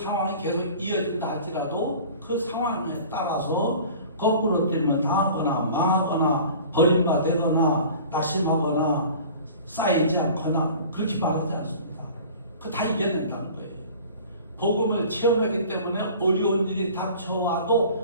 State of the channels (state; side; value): inverted; both; correlation -0.43